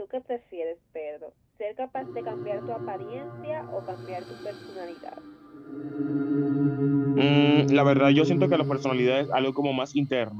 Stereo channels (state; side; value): identical; both; correlation 1.00